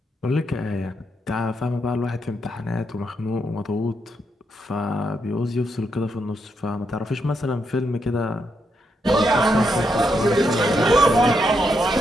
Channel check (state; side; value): normal; both; correlation 0.80